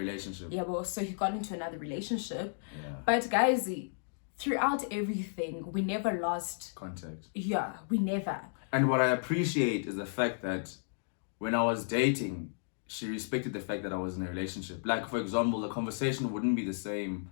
Yeah, well, so he got into another relationship. Yeah. But guys, throughout everything, we never lost contact. Yeah, we never. And what I appreciate is the fact that when I was dating, she respected the fact that I was in a relationship. Like, for example, the conversation wouldn't be the same.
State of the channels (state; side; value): silent; right; digital silence